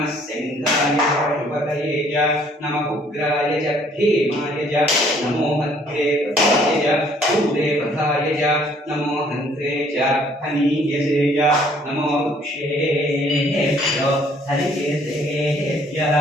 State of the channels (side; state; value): both; normal; correlation 0.61